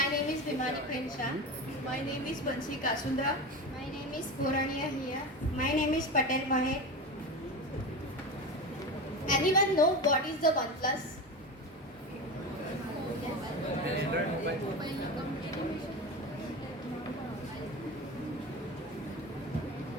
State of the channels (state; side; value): normal; both; correlation 0.24